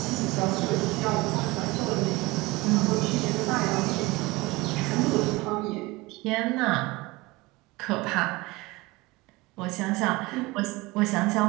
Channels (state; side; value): quieter; left; 21.7 dB